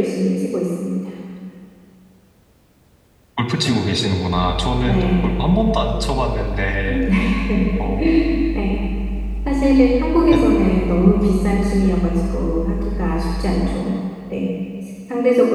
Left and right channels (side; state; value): both; identical; correlation 1.00